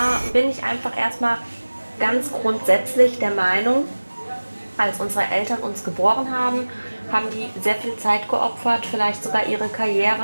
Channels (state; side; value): inverted; both; correlation -1.00